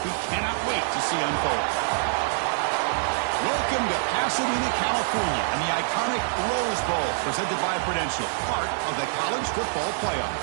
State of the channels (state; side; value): silent; left; digital silence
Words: we cannot wait to see unfold. Welcome to Pasadena, California, and the iconic Rose Bowl presented by Prudential, part of the college football playoff.